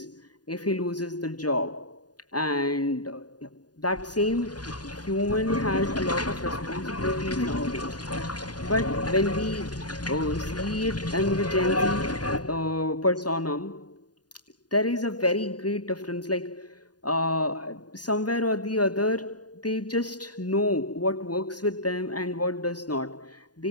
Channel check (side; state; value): right; late; 0.69 ms